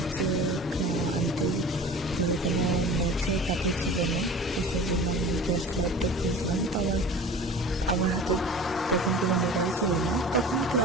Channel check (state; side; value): normal; both; correlation 0.40